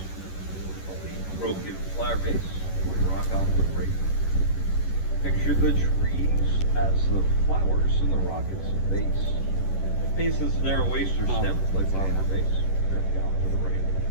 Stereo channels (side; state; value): right; late; 11 ms